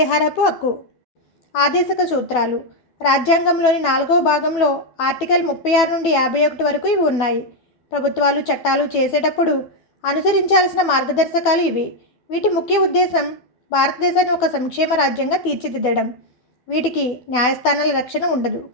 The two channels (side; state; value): right; late; 12 ms